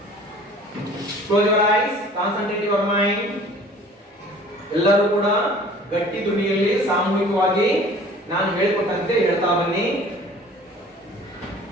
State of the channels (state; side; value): normal; both; correlation 0.48